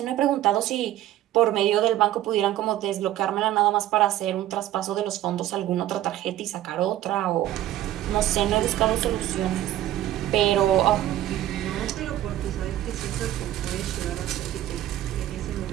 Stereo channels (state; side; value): quieter; left; 13.5 dB